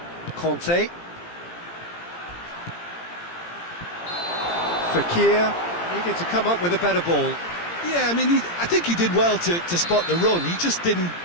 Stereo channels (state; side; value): late; right; 17 ms